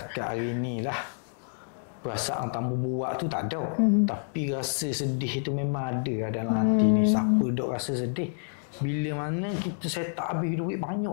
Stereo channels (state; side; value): silent; right; digital silence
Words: hari ni lah perasaan tak mau buat tu tak ada. Tapi rasa sedih tu memang ada dalam hati ni. Siapa dok rasa sedih? Bila mana kita set up habis duit banyak